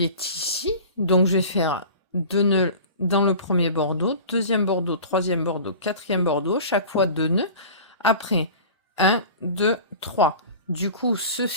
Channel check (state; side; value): inverted; both; correlation -0.38